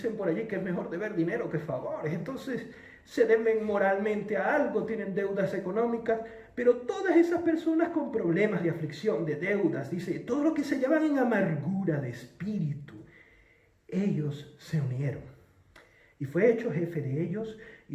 por allí que es mejor deber dinero que favores. Entonces se deben moralmente a algo, tienen deudas económicas, pero todas esas personas con problemas de aflicción, de deudas, dice, todo lo que se llaman en amargura de espíritu, ellos se unieron. Y fue hecho jefe de ellos y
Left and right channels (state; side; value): identical; both; correlation 1.00